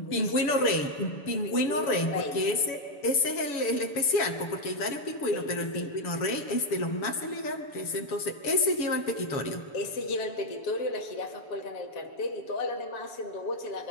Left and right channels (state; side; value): late; right; 7.0 ms